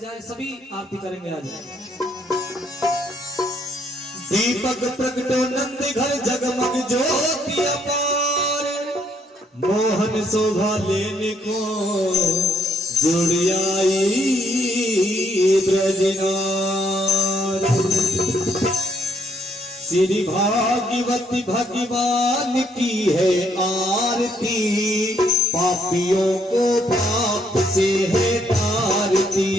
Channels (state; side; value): normal; both; correlation 0.70